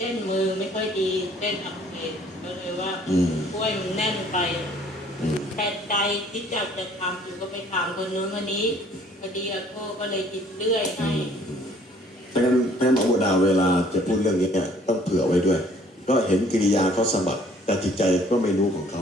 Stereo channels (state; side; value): normal; both; correlation 0.58